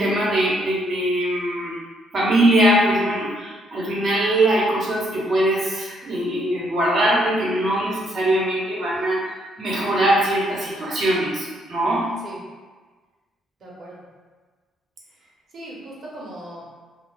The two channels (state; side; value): normal; both; correlation 0.71